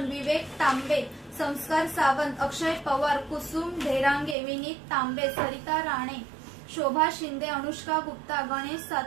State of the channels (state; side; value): drops out; left; at 4.4 s